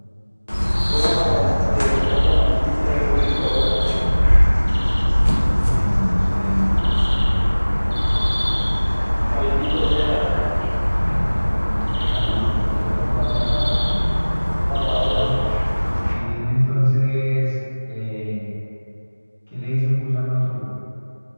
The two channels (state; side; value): inverted; both; correlation -1.00